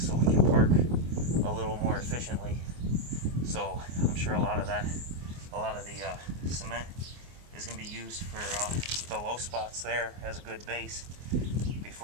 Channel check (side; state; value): left; late; 24 ms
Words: we can park a little more efficiently. So I'm sure a lot of the cement is going to be used for the low spots there as a good base